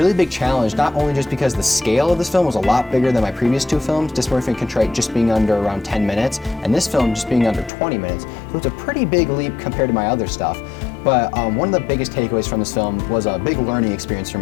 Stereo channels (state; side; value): drops out; right; at 7.7 s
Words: big challenge, not only just because the scale of this film was a lot bigger than my previous 2 films, Dysmorphia and Contrite just being under around 10 minutes, and this film just being under 20 minutes. So it's a pretty big leap compared to my other stuff. But one of the biggest takeaways from this film was a big learning experience for